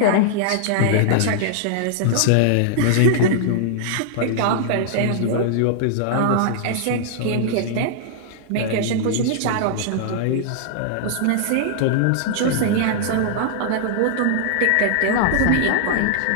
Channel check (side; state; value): both; different; correlation -0.01